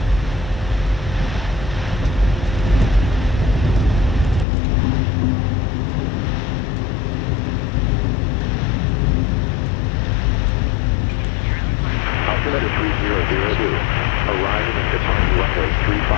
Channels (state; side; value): drops out; right; at 4.5 s